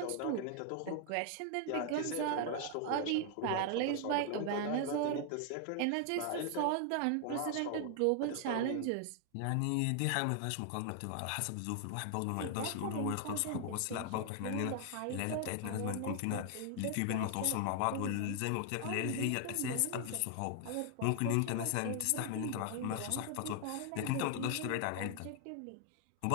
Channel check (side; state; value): both; different; correlation 0.00